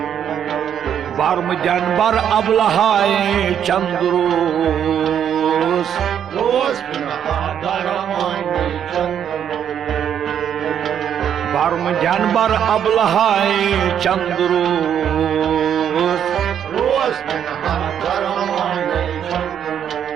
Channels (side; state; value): left; quieter; 9.0 dB